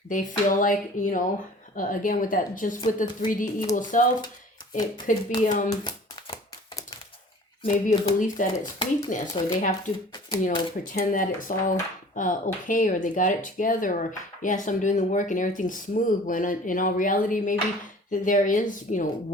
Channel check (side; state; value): both; normal; correlation 0.46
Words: they feel like, you know, again, with that, just with the 3D ego self, it could be maybe a belief that it's weakness, or they have to, you know, pretend that it's all okay, or they got it together, or yes, I'm doing the work and everything's smooth, when in all reality, maybe there is, you know,